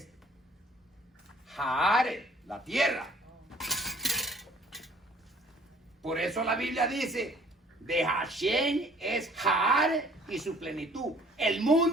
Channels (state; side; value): normal; both; correlation 0.56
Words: Jaare, la tierra. Por eso la Biblia dice, de Hashem es Jaare y su plenitud, el